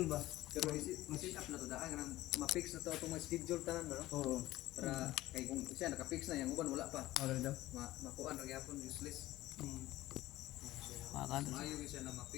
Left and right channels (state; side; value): quieter; right; 16.5 dB